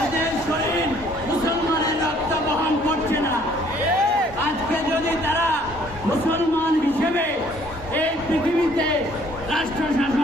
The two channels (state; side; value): normal; both; correlation 0.60